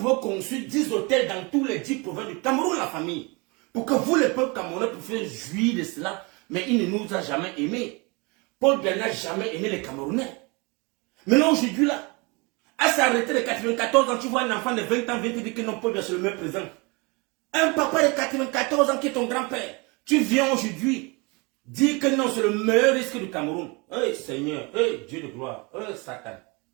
construire 10 hôtels dans tous les 10 provinces du Cameroun, la famille. Pour que vous, les peuples camerounais, puissiez jouir de cela. Mais il ne nous a jamais aimés. Paul Biya n'a jamais aimé les Camerounais. Maintenant, aujourd'hui, là, à sa retraite de 94 ans, tu vois un enfant de 20 ans vient te dire que non, Paul Biya, c'est le meilleur président. Un papa de 94 ans qui est ton grand-père, tu viens aujourd'hui dire que non, c'est le meilleur risque du Cameroun. Hey Seigneur, hey Dieu de gloire, hey Satan.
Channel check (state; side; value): quieter; left; 28.4 dB